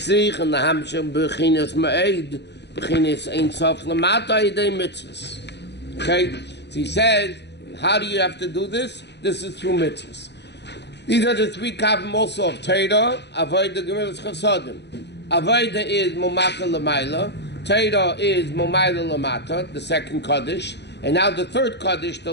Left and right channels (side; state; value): right; late; 0.50 ms